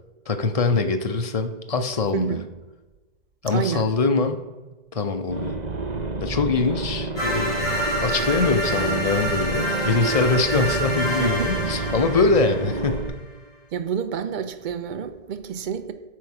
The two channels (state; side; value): late; left; 1.7 ms